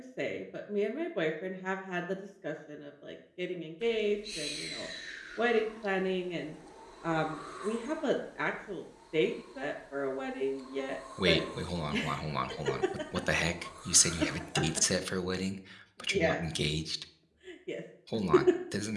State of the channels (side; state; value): both; identical; correlation 1.00